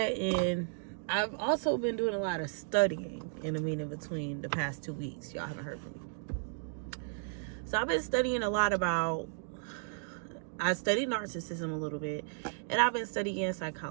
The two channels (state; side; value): silent; left; digital silence